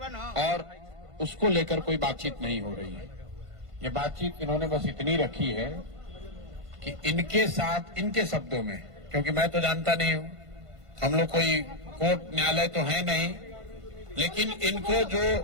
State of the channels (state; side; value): late; left; 1.5 ms